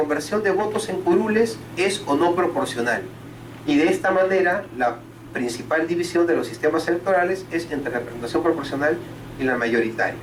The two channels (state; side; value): identical; both; correlation 1.00